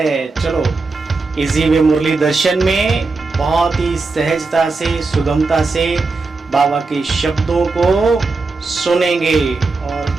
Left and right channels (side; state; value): left; quieter; 3.8 dB